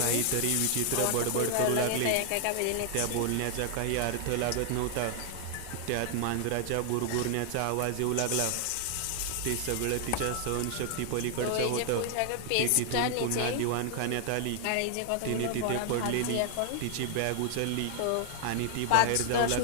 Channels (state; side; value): different; both; correlation 0.00